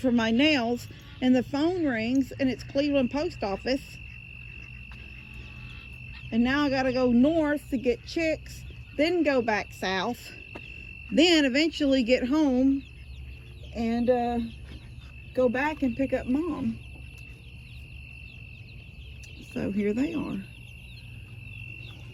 my nails, and the phone rings, and it's Cleveland Post Office. And now I gotta go north to get chicks, then go back south, then eventually get home and go back and pick up Mom. So here they are.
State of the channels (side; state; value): both; identical; correlation 1.00